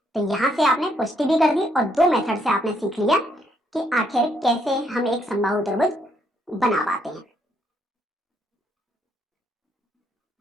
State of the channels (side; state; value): both; normal; correlation 0.72